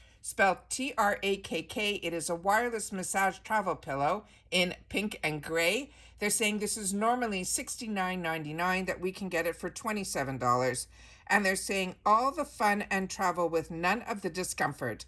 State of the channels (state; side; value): identical; both; correlation 1.00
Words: spelled T-R-A-K-K. It is a wireless massage travel pillow in pink and gray. They're saying this is normally $69.99, that we can get it for $27. And they're saying all the fun and travel with none of the discomfort.